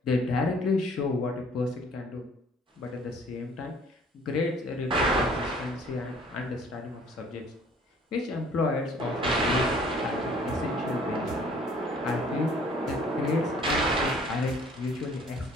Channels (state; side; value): normal; both; correlation 0.56